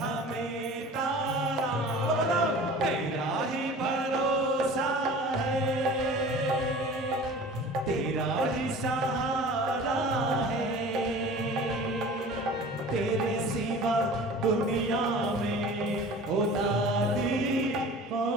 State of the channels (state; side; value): normal; both; correlation 0.41